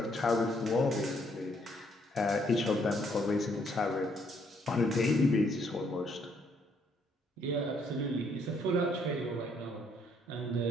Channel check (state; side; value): normal; both; correlation 0.69